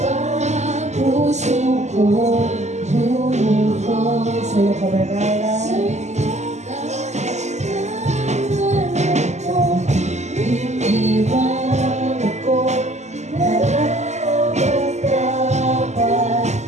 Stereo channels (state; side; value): late; left; 0.33 ms